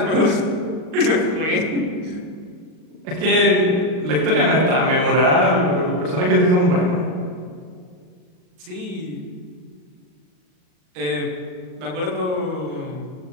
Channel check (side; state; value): left; late; 38 ms